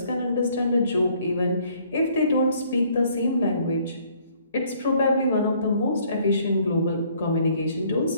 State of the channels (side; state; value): both; inverted; correlation -0.62